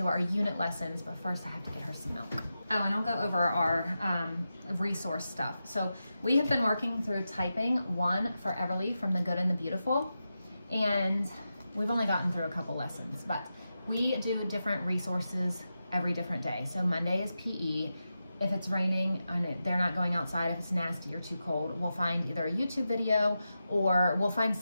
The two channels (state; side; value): inverted; both; correlation -0.90